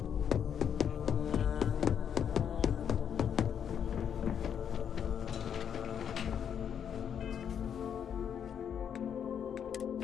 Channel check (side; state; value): right; quieter; 8.3 dB